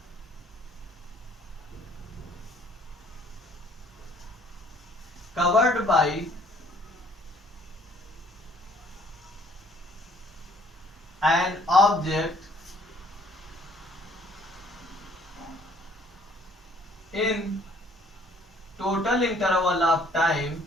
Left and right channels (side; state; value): both; normal; correlation 0.60